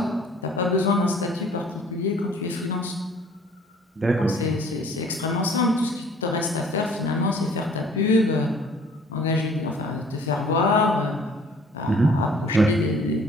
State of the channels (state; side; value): normal; both; correlation 0.54